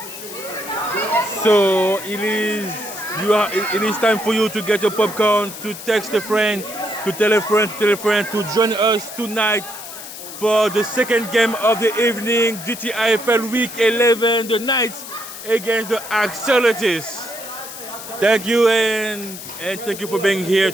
So it is time for you to get your popcorn, to text a friend, to tell a friend to join us tonight for the second game of the evening, GTIFL Week 11, the Knights against the Axolotus. Thank you, and thank you for being here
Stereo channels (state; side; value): noise; left; hiss, 12 dB below the sound